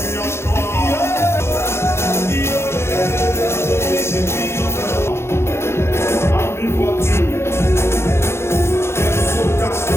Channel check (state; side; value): late; right; 0.12 ms